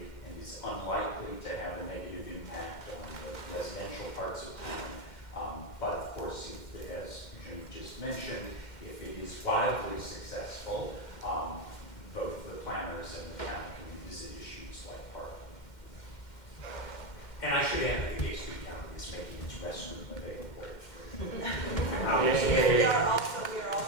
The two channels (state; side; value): late; right; 2.1 ms